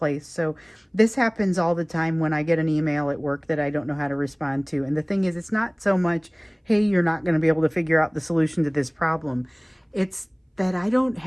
So this happens all the time when I get an email at work that I don't know how to respond to. And the thing is, it's not so much, hey, you're not going to be able to figure out the solution to this problem. It's that I don't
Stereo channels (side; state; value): both; identical; correlation 1.00